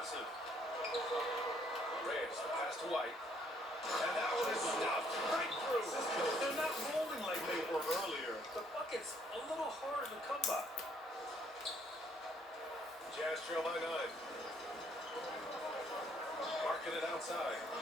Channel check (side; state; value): both; normal; correlation 0.66